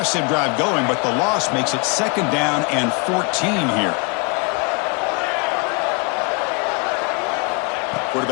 drive going, but the loss makes it 2nd down and 14 here.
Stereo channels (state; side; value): quieter; right; 32.1 dB